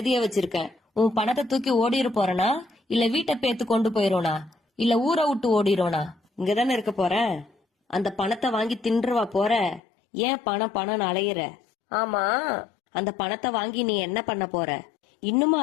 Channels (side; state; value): right; drops out; at 9.8 s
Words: வச்சிருக்கேன். உன் பணத்தை தூக்கி ஓடிரு போறனா, இல்ல வீட்டை பேத்து கொண்டு போயிரோனா, இல்ல ஊரை விட்டு ஓடிரோனா? இங்கதானே இருக்க போற. அந்த பணத்தை வாங்கி தின்றுவா போற. ஏன் பணம் பணம் அலையிற? ஆமா, அந்த பணத்தை வாங்கி நீ என்ன பண்ண போற? இன்னுமா